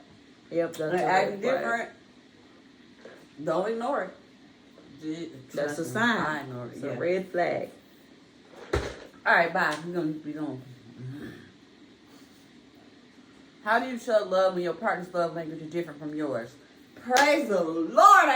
yep, that's and acting different, don't ignore it. That's a sign. I ignore it. It's a red flag. All right, bye. We're gonna. How do you show love when your partner's love language is different from yours? Praise the Lord,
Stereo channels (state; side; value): identical; both; correlation 1.00